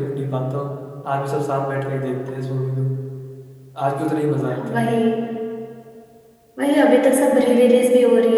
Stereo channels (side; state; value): both; identical; correlation 1.00